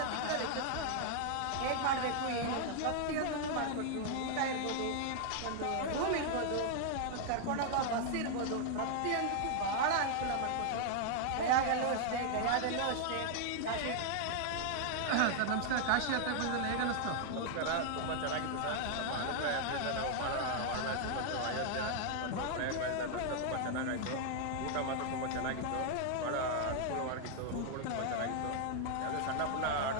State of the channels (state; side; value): different; both; correlation 0.00